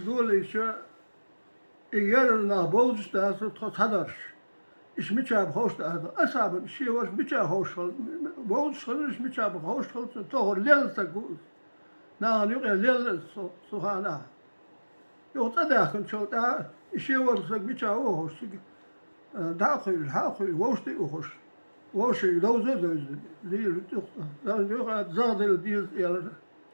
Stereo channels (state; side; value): inverted; both; correlation -1.00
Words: شو يرنا بوز دا تحضرش إيش متشاب خوش دا أصعب شيء واش متشاب خوش بوز إيش متشاب خوش تهور ليل تقول نعم يقول ليل سبحانه يوتداخل شو دا شيء ورسك متشاب خوش داخل ووشتي وخش ووشي دوز ليل يقول زاد الديز يلا